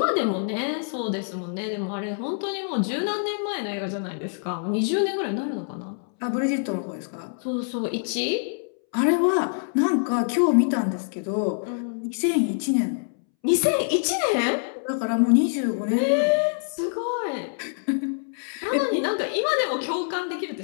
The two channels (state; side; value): silent; right; 61 dB below the other